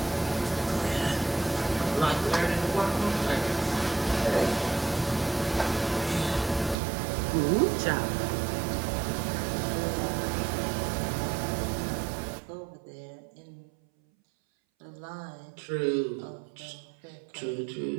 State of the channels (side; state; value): left; drops out; at 6.8 s